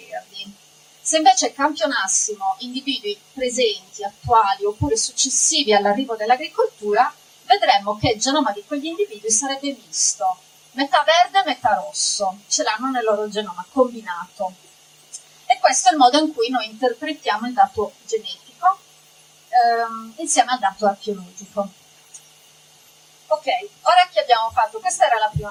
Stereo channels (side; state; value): both; identical; correlation 1.00